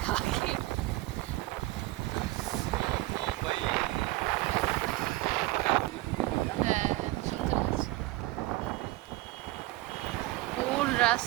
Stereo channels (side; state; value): left; quieter; 19.0 dB